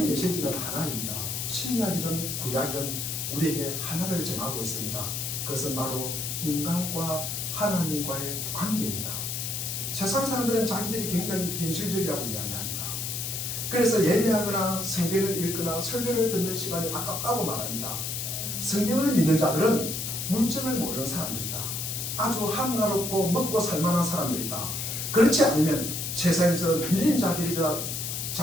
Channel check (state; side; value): noise; left; hiss, 3 dB below the sound